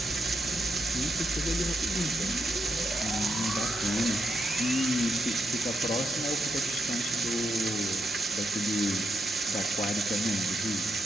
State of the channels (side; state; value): both; normal; correlation 0.82